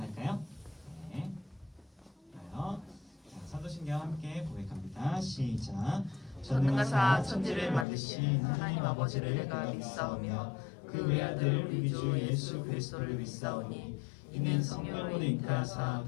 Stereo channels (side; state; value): right; drops out; at 7.9 s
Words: 네, 좋아요. 자, 사도신경 함께 고백합니다. 시작. 전능하사 천지를 만드신 하나님 아버지를 내가 믿사오며 그 외아들 우리 주 예수 그리스도를 믿사오니 이는 성령으로 잉태하사